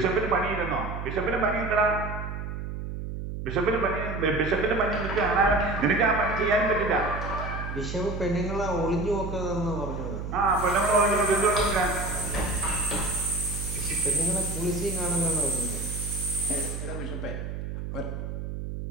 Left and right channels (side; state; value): right; noise; hum, 6 dB below the sound